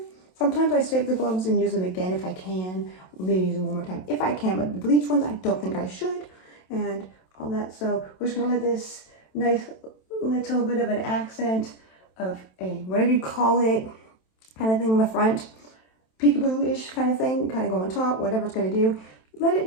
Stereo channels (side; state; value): right; late; 27 ms